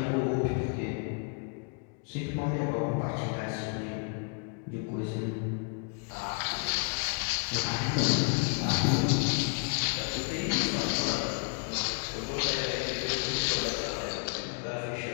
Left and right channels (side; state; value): right; quieter; 38.3 dB